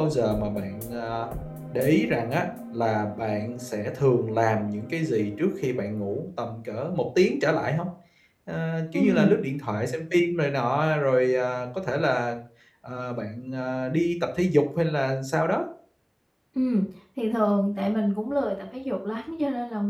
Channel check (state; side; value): identical; both; correlation 1.00